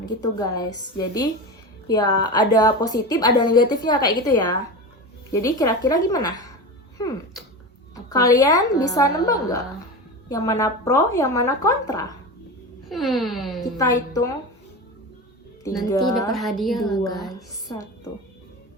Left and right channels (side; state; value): both; normal; correlation 0.25